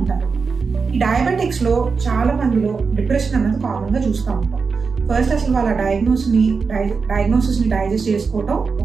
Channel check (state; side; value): quieter; left; 5.0 dB